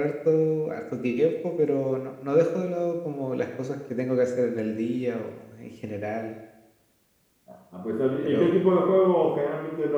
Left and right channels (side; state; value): both; identical; correlation 1.00